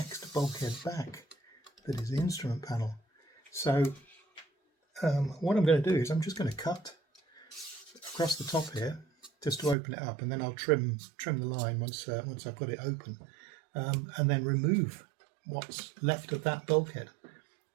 bulkhead back that is the instrument panel. So what I'm going to do is I'm just going to cut across the top here just to open it up, and then I'll trim the line once I've got it open, and then remove what's left of that bulkhead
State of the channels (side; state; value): left; drops out; at 9.8 s